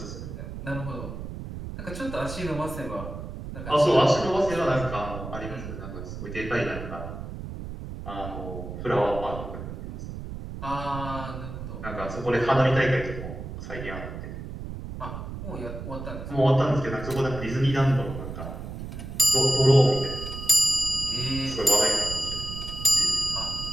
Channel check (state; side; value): noise; right; rumble, 9 dB below the sound